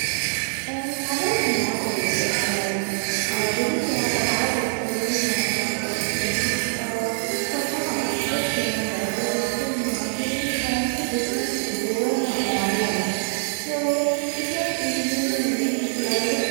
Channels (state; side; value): silent; left; 62 dB below the other